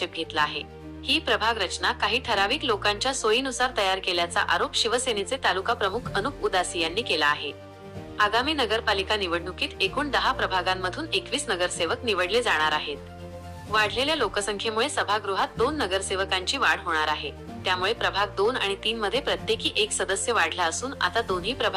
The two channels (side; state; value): both; identical; correlation 1.00